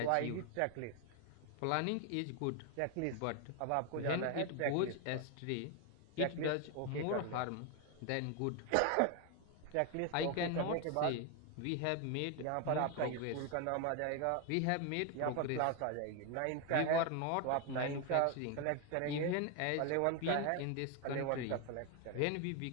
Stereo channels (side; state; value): both; different; correlation 0.01